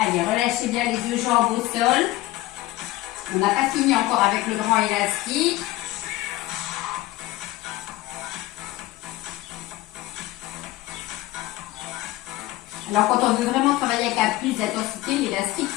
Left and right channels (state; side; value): quieter; right; 17.4 dB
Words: relâchez bien les deux jambes au sol. On n'a pas fini encore avec le grand élastique. Alors quand on veut vraiment travailler avec la plus d'intensité, l'élastique